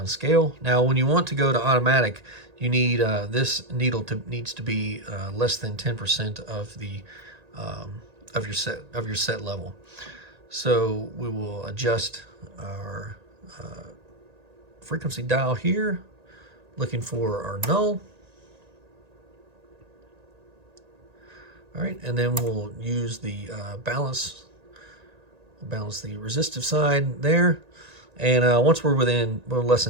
Now, when you want to go to automatic, you need this needle needs to be less than 10% of the of your set level. So we will adjust our frequency dial here, looking for our null. All right, and then we'll use the balance. We'll balance the resistive side there. And once we're less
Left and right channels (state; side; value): late; left; 1.9 ms